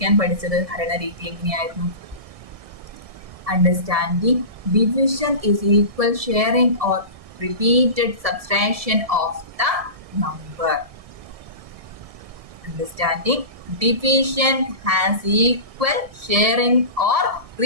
പഠിച്ചത്? ഹരണ രീതി എങ്ങനെയായിരുന്നു? Understanding division is equal sharing or repeated subtraction of the number. Understanding division has equal sharing or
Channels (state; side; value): late; left; 1.7 ms